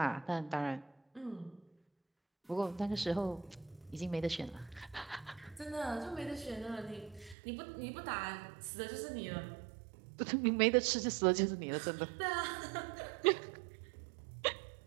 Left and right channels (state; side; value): drops out; left; at 7.4 s